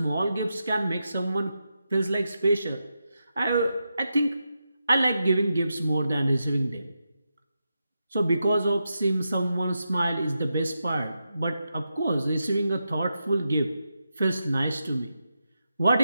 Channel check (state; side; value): inverted; both; correlation -0.87